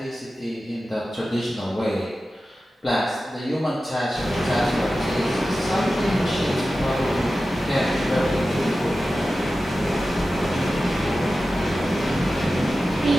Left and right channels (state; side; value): normal; both; correlation 0.94